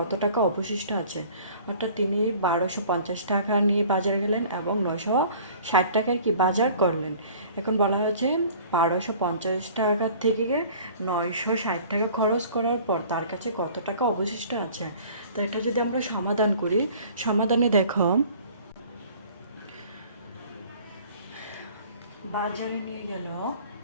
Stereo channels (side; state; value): both; inverted; correlation -0.48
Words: টাকা অবশিষ্ট আছে? অর্থাৎ তিনি 1250 টাকা নিয়ে বাজারে গেলেন এবং 960 টাকার কি বাজার করলেন। এখন বলা হয়েছে 1250 টাকা থেকে 960 টাকা খরচ করার পর তার কাছে কত টাকা অবশিষ্ট আছে। তো এটা যদি আমরা সমাধান করি, সমাধানে দেখো, বাজারে নিয়ে গেল,